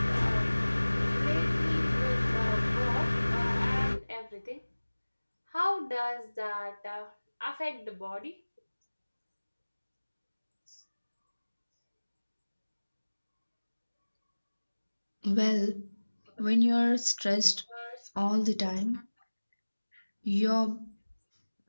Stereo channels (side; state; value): both; inverted; correlation -1.00